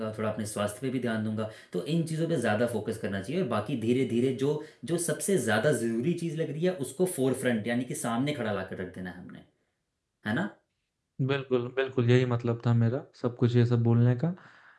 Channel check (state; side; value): identical; both; correlation 1.00